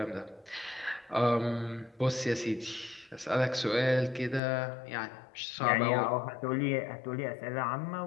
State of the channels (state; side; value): drops out; right; at 4.4 s